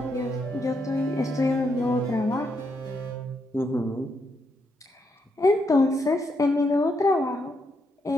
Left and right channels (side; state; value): both; normal; correlation 0.79